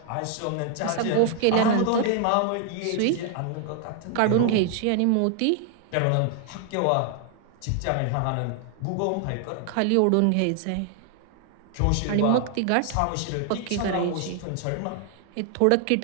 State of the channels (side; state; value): both; different; correlation 0.00